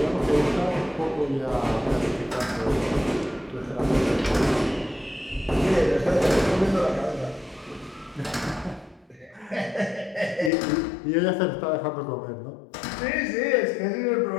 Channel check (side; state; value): right; drops out; at 10.5 s